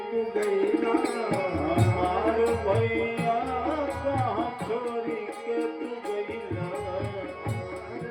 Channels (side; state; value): both; identical; correlation 1.00